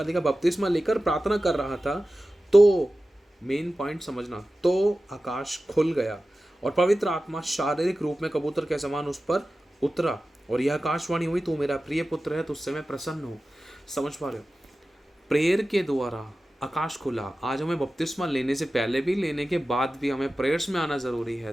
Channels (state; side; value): normal; both; correlation 0.95